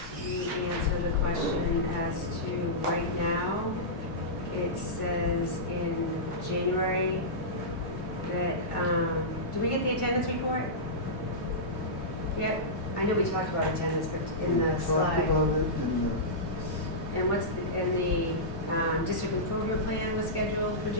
you answer the question as to right now? It says in January that, did we get the attendance report? Yep, I know we talked about attendance, but in the Talked slide. about it in And the district improvement plan was scheduled for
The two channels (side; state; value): both; normal; correlation -0.15